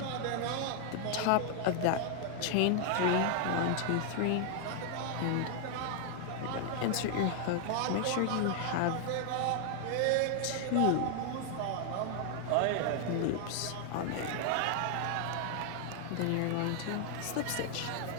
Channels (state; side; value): different; both; correlation 0.00